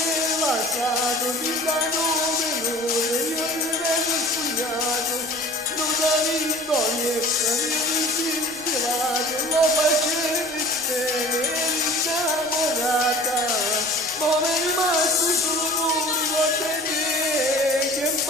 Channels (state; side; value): noise; right; rumble, 25 dB below the sound